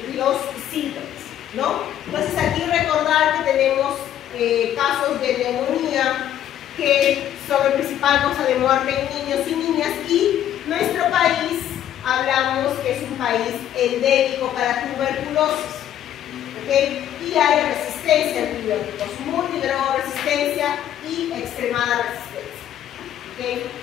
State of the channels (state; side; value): quieter; right; 11.1 dB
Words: los síntomas, ¿no? Entonces, aquí recordar que tenemos casos de neumonía que son la principal causa de muerte en niños y niñas, y nuestro país, hablamos que es un país endémico para tuberculosis. ¿Okay? Y hay resistencia a antibióticos, multidrogoresistencia y extremada resistencia. ¿Okay?